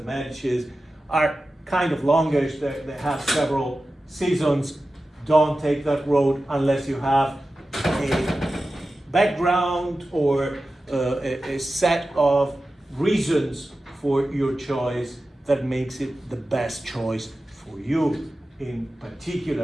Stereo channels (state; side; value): normal; both; correlation 0.94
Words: are kind of longish. They have several seasons. Don't take that road unless you have a background or a set of reasons for your choice that makes it the best choice for you in